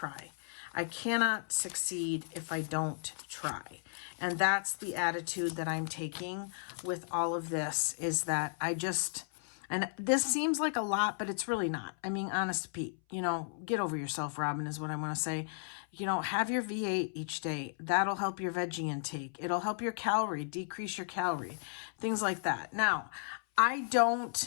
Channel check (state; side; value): silent; right; 55 dB below the other